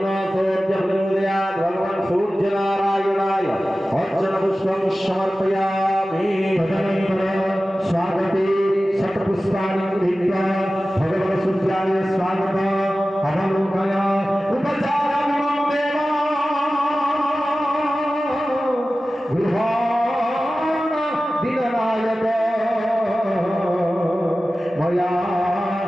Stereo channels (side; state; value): both; normal; correlation 0.95